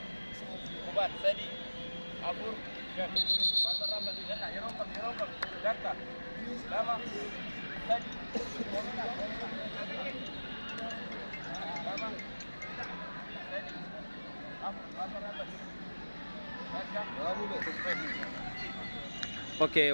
kubaan sadi afur shan barbarraa badii jedha yeroo kam takka lama sadi lama sadi afur barbarraa badii Oke,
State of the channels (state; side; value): inverted; both; correlation -1.00